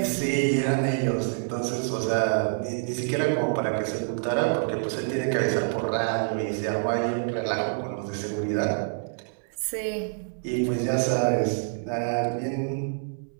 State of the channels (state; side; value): silent; left; 60 dB below the other